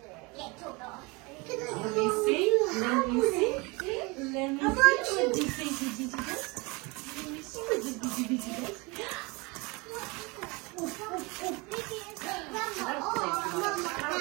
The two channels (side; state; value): left; quieter; 26.8 dB